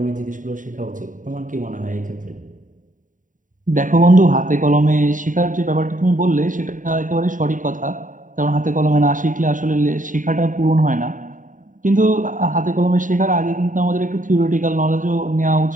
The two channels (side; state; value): left; late; 0.38 ms